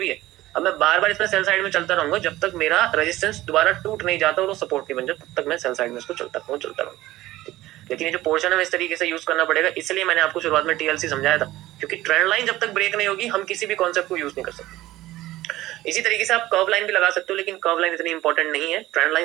ही है, अब मैं बार बार इसमें सेल साइड में चलता रहूंगा जब तक मेरा रेजिस्टेंस दोबारा टूट नहीं जाता और वो सपोर्ट नहीं बन जाता, तब तक मैं सेल साइड में इसको चलता रहूंगा। लेकिन ये जो पोर्शन है इस तरीके से यूज करना पड़ेगा, इसलिए मैंने आपको शुरुआत में टीएलसी समझाया था, क्योंकि ट्रेंड लाइन जब तक ब्रेक नहीं होगी हम किसी भी कॉन्सेप्ट को यूज नहीं कर सकते। इसी तरीके से आप कर्व लाइन भी लगा सकते हो, लेकिन कर्व लाइन इतनी इंपॉर्टेंट नहीं है, ट्रेंड लाइन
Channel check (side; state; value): left; quieter; 16.5 dB